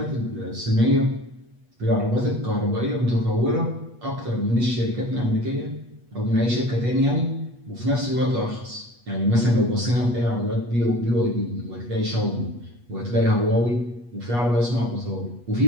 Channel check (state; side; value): late; left; 8.3 ms